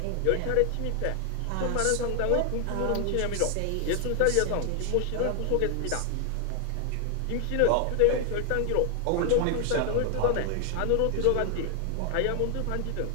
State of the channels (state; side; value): different; both; correlation 0.00